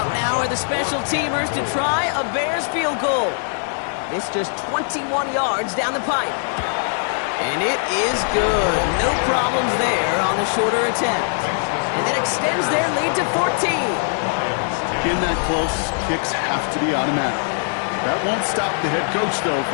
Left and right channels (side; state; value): right; silent; 61 dB below the other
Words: now are the special teamers to try a Bears field goal. This just 21 yards down the pipe. And it is good. No problems there on the shorter attempt. And that extends their lead to 14. In that close, kicks have to be automatic. That won't stop the head coach, though,